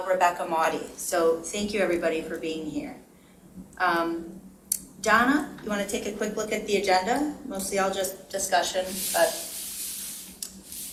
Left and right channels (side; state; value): both; identical; correlation 1.00